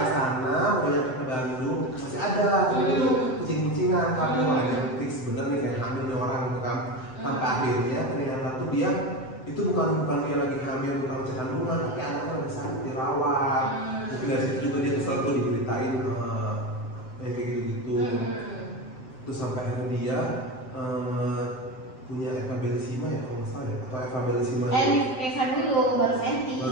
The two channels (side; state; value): right; late; 7.8 ms